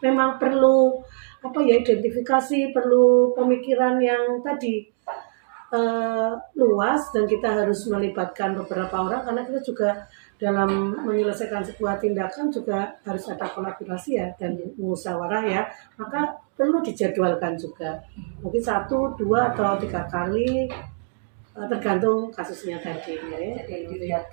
memang perlu apa ya identifikasi, perlu pemikiran yang tadi luas, dan kita harus melibatkan beberapa orang karena kita juga dalam menyelesaikan sebuah tindakan juga harus ada kolaborasi ya dan musyawarah ya, maka perlu dijadwalkan juga, mungkin 1, 2 atau 3 kali tergantung kasusnya tadi ya. Jadi dilihat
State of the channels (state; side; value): silent; left; digital silence